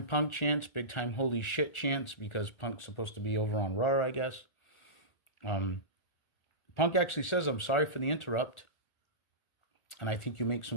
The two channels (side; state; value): right; late; 1.3 ms